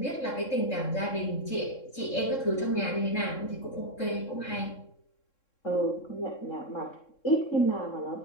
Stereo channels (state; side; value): late; right; 3.7 ms